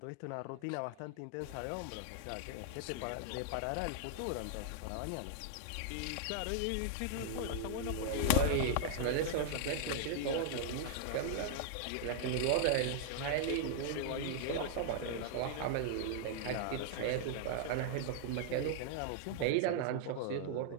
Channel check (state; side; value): different; both; correlation -0.01